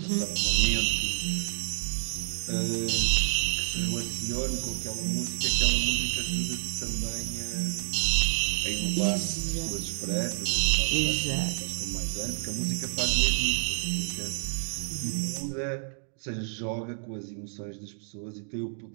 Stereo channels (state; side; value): silent; left; digital silence